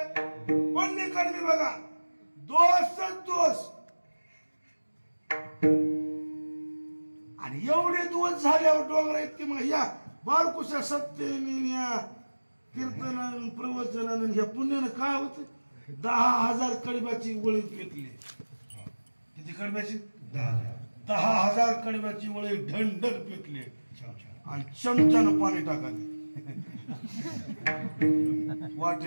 पुण्य कर्मी बघा दोषच दोष आणि एवढे दोष झाल्यावर डोंगरा इतके मग या बारकुशा सत्तेने कीर्तनानं प्रवचनानं ह्या पुण्यानं काय होत 10,000 कडब्याची वळी पेटली. किती कडब्याची? 10,000 कडब्याची वळी ढंढर पेटली आणि चमच्यानं पाणी टाकाले.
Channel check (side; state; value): both; inverted; correlation -1.00